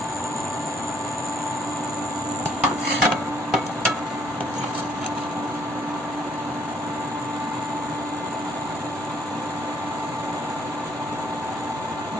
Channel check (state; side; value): normal; both; correlation 0.65